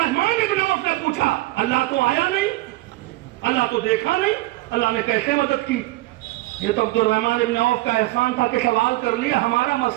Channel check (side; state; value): left; quieter; 19.2 dB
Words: ابن عوف نے پوچھا اللہ تو آیا نہیں، اللہ تو دیکھا نہیں، اللہ نے کیسے مدد کی؟ یہ تو عبد الرحمن ابن عوف کا احسان تھا کہ سوال کر لیا، ہمارا